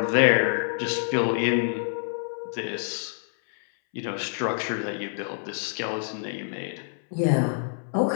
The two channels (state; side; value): silent; right; 60 dB below the other